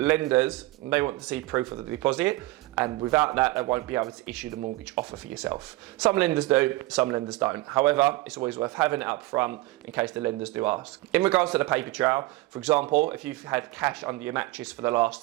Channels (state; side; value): quieter; left; 19.4 dB